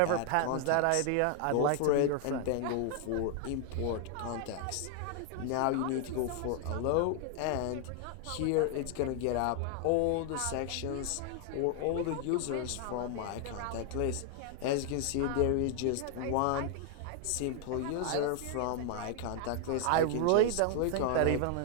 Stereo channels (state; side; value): different; both; correlation 0.00